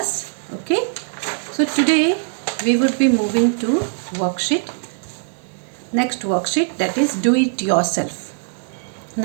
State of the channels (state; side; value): silent; left; 65 dB below the other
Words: Okay, so today we would be moving to next worksheet, that is do it yourself.